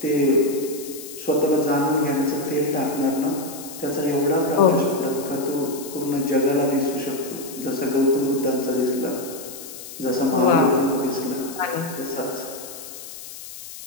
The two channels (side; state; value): left; noise; hiss, 13 dB below the sound